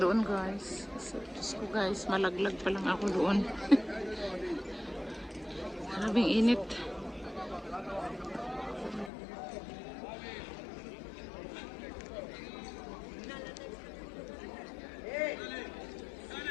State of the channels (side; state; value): right; drops out; at 9.1 s